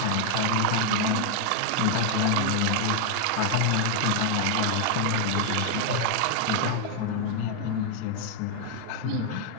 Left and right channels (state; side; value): different; both; correlation 0.00